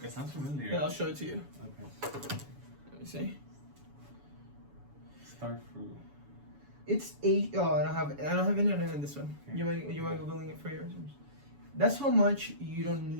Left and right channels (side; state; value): left; late; 7.1 ms